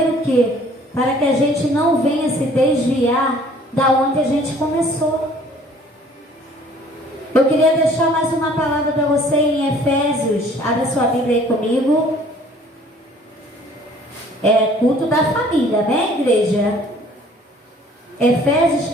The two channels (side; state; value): both; normal; correlation 0.54